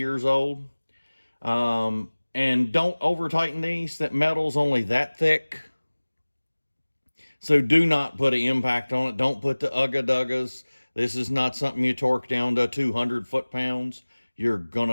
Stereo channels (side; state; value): both; inverted; correlation -1.00